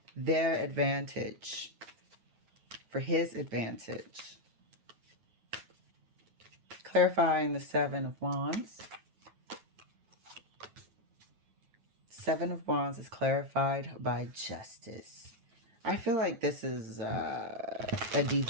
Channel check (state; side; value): late; left; 9.4 ms